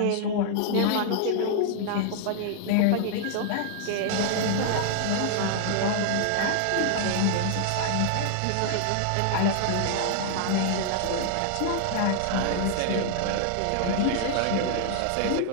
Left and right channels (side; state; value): both; different; correlation -0.01